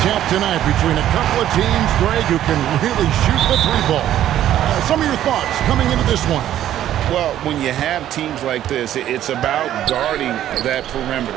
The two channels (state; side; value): quieter; left; 11.9 dB